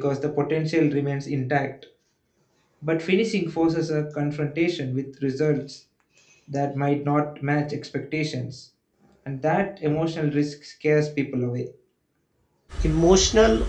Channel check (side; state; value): both; identical; correlation 1.00